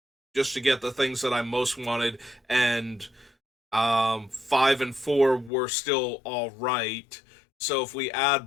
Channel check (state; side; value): drops out; right; at 5.5 s